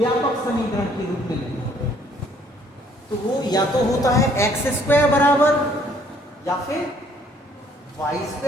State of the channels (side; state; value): both; normal; correlation 0.63